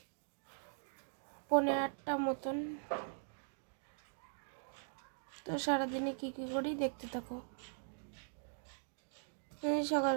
8:30 মতন। তো সারাদিনে কী কী করি দেখতে থাকো।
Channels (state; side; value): silent; left; digital silence